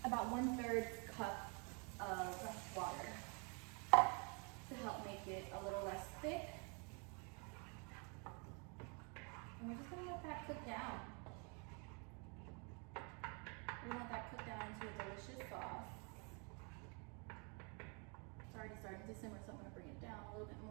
about 1/3 cup of water to help make it a little less thick. And we're just gonna let that cook down. We want that cooked down into a delicious sauce. It's already starting to simmer, so I'm gonna bring it down a little bit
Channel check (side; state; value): left; quieter; 35.2 dB